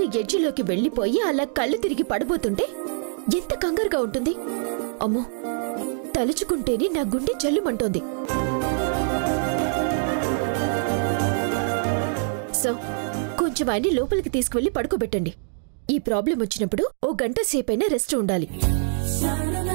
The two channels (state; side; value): silent; left; digital silence